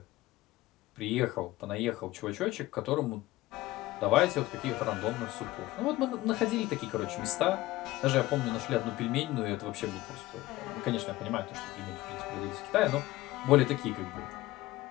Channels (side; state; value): right; quieter; 17.7 dB